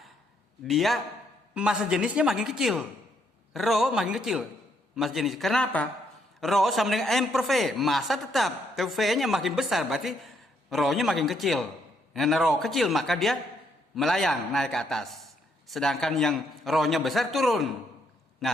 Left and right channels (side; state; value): both; normal; correlation 0.73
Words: dia massa jenisnya makin kecil. Rho makin kecil massa jenis. Kenapa? Rho sama dengan M per V. Massa tetap. V-nya makin besar, berarti Rho-nya makin kecil. Karena Rho kecil, maka dia melayang naik ke atas. Sedangkan yang Rho-nya besar turun.